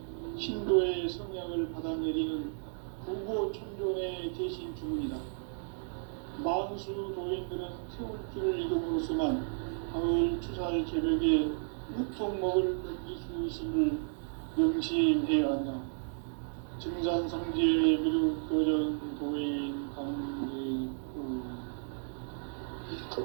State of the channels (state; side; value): silent; left; digital silence